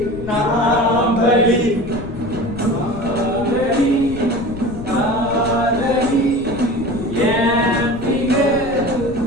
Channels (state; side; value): noise; left; rumble, 13 dB below the sound